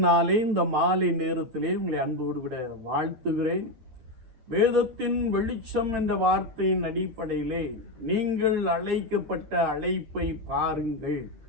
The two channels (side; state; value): left; late; 9.7 ms